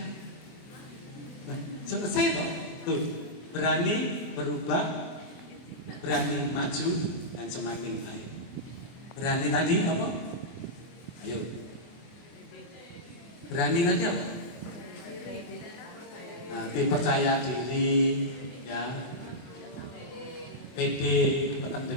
Selesai kok. Tuh, berani berubah, berani maju, dan semakin baik. Berani tadi apa? Ayo. Berani tadi apa? Nah, percaya diri, ya. Pede, tekan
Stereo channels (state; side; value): late; right; 24 ms